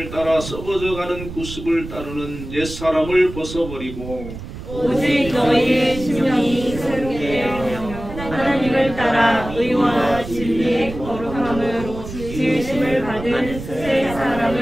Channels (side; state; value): right; noise; rumble, 11 dB below the sound